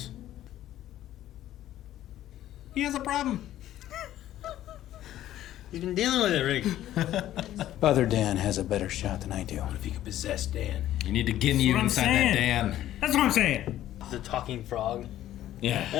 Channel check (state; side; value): quieter; right; 13.0 dB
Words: He has a problem. He's been dealing with it, Rick. Other Dan has a better shot than I do. What if he could possess Dan? You need to get you what I'm inside saying. that Dan. That's what I'm saying. The talking frog.